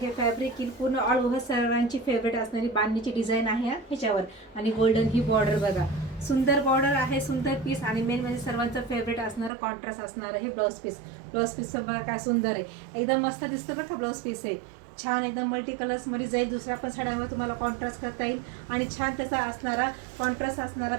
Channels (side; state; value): left; drops out; at 9.5 s